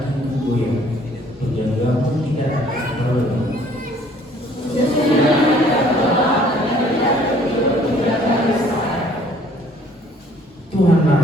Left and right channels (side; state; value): both; normal; correlation 0.58